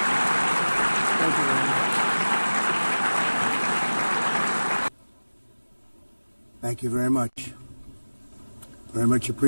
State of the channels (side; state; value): both; inverted; correlation -1.00